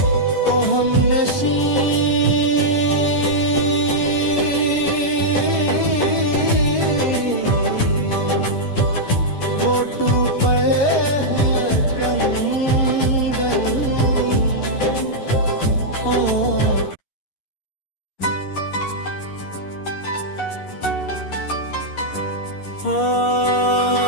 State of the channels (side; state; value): right; late; 11 ms